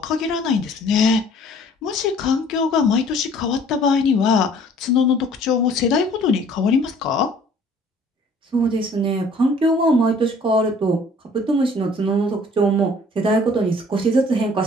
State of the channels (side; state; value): both; normal; correlation 0.54